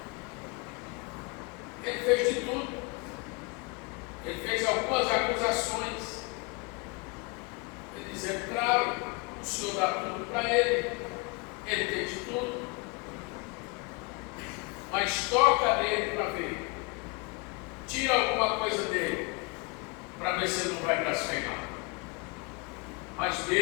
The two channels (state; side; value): quieter; right; 29.2 dB